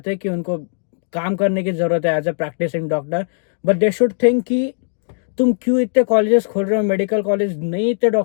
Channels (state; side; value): silent; right; digital silence